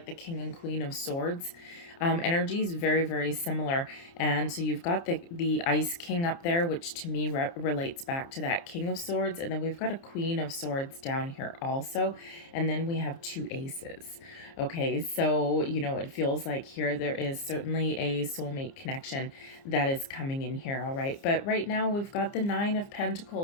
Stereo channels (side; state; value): right; late; 29 ms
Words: the King and Queen of Swords. Energies very, very similar. And so you've got the Ice King up there, which to me relates back to that King of Swords. And then we've got a Queen of Swords down here also. And then we have two aces. Okay, so, you know, it feels like here there is certainly a soulmate connection that is coming in here, all right? But right now we've got the Nine of